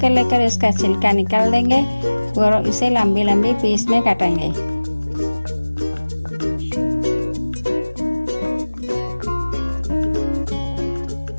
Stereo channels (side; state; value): both; inverted; correlation -1.00